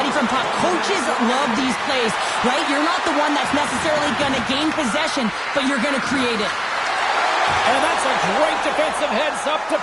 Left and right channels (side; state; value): both; identical; correlation 1.00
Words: from puck. Coaches love these plays, right? You're not the one that's necessarily going to gain possession, but you're going to create it. And that's a great defensive heads-up to